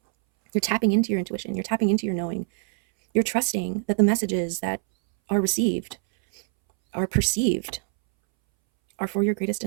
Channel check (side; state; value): left; silent; 62 dB below the other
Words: You're tapping into your intuition. You're tapping into your knowing. You're trusting that the messages that are received, are perceived, are for your greatest